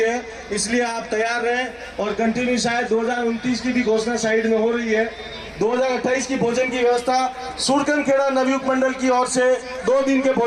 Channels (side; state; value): both; identical; correlation 1.00